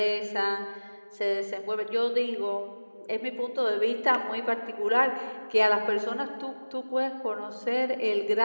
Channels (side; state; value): both; inverted; correlation -1.00